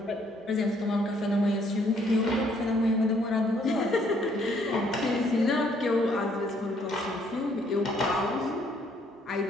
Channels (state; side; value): normal; both; correlation 0.66